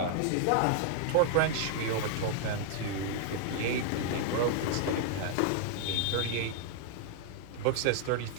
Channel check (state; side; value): different; both; correlation 0.00